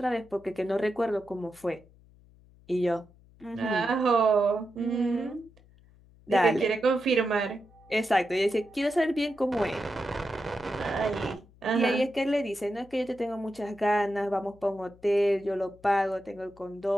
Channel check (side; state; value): left; noise; hum, 27 dB below the sound